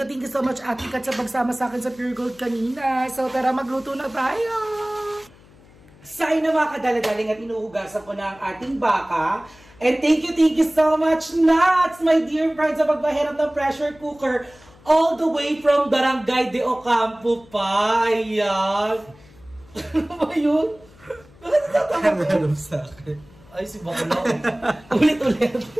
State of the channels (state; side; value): noise; left; hum, 26 dB below the sound